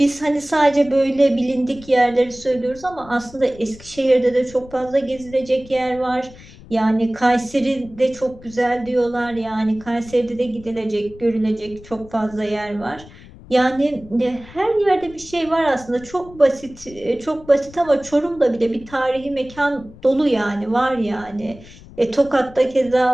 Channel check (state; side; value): noise; left; rumble, 20 dB below the sound